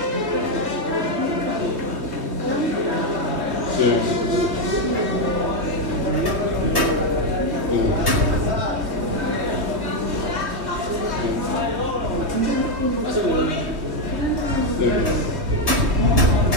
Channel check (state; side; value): late; left; 3.2 ms